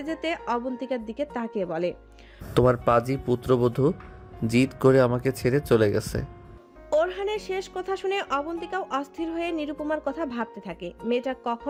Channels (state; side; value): identical; both; correlation 1.00